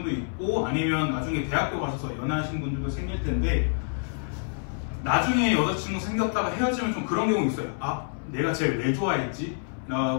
있고, 아니면 나중에 대학교 가셔서 연애하신 분들도 생길 텐데, 나중에 여자친구 생겼다가 헤어지면 좀 그런 경우 있어요. 내가 쟤를 왜 좋아했지?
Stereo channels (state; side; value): silent; right; 59 dB below the other